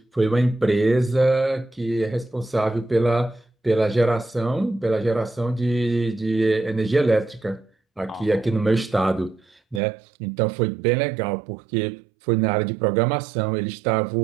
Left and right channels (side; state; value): left; drops out; at 9.8 s